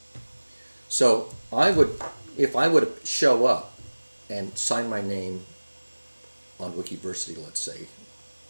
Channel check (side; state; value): both; inverted; correlation -1.00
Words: So if I would show up and sign my name on Wikiversity, let's say,